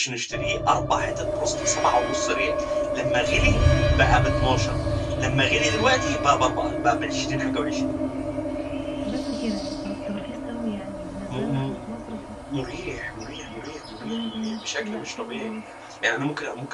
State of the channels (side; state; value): both; identical; correlation 1.00